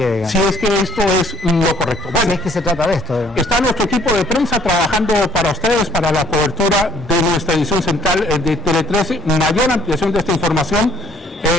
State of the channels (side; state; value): both; normal; correlation 0.61